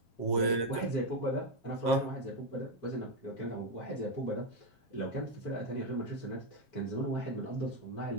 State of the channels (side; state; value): right; late; 7.4 ms